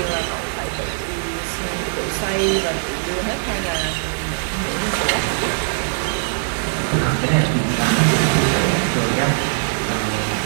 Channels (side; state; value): left; silent; digital silence